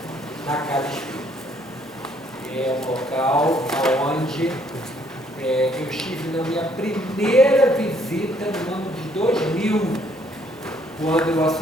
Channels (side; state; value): both; normal; correlation 0.66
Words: na Casa Espírita. É um local onde eu estive na minha primeira visita no ano de 2000, quando eu